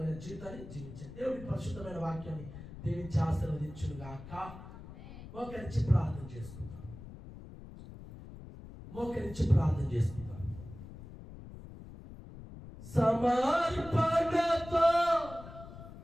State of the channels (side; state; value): left; noise; rumble, 14 dB below the sound